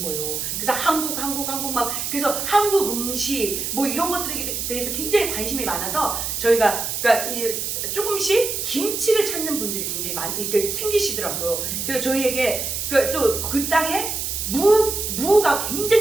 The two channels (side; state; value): right; noise; hiss, 3 dB below the sound